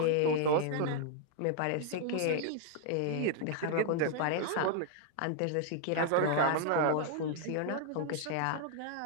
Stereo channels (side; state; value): both; different; correlation -0.01